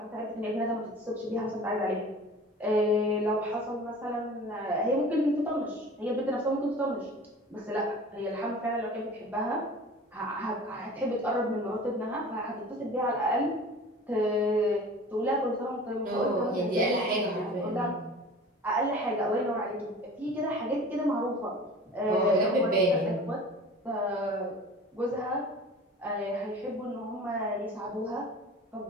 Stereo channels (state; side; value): normal; both; correlation 0.41